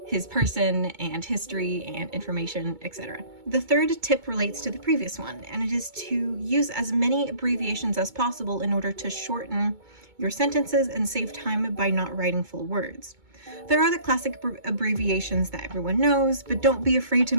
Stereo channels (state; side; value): late; left; 2.2 ms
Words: his person and history and information, etc. The third tip relates to the previous one, and it is to use as many abbreviations as possible in order to shorten your sentences and save time by not writing full words. There are the classic abbreviations that everyone knows, but don't be afraid to